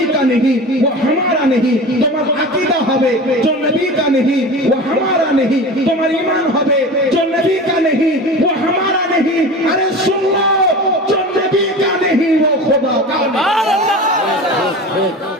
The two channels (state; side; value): normal; both; correlation 0.33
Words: কা নেহি वो हमारा नहीं, তোমার আকীদা হবে যে নবী কা নেহি वो हमारा नहीं, তোমার ঈমান হবে যে নবী কা নেহি वो हमारा नहीं। अरे सुन लो, जो नबी का नहीं वो खुदा का।